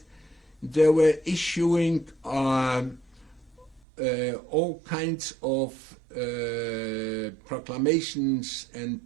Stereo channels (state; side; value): drops out; left; at 3.8 s